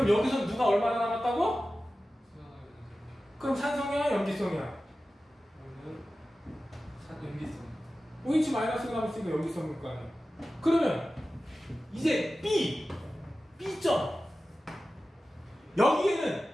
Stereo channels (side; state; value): both; normal; correlation 0.95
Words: 여기서 누가 얼마나 남았다고? 그럼 산성이야, 염기성이야? 그러면 연기성. OH 마이너스가 남았으니까 염기성일 거 아니야. 그러면 이제 B점. 여기에는